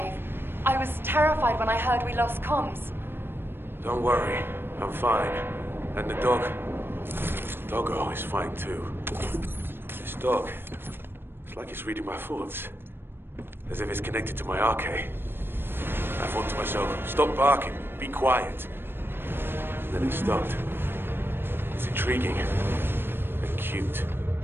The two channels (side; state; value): left; late; 0.10 ms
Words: I was terrified when I heard we lost comms. Don't worry, I'm fine. And the dog... Doggo is fine too. This dog... It's like it's reading my thoughts. As if it's connected to my arcade. I thought to myself, stop barking, be quiet. And then it stopped. It's intriguing. And cute.